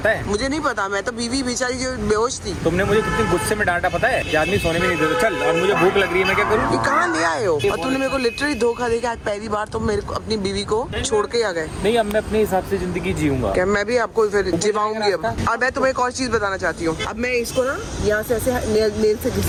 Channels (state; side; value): identical; both; correlation 1.00